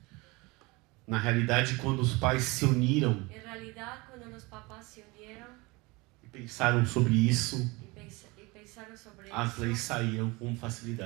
Na realidade, quando os pais se uniram En realidad, cuando los papás se unieron e pensaram sobre isso, y pensaron sobre as eso, leis saíam com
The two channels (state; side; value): quieter; left; 24.6 dB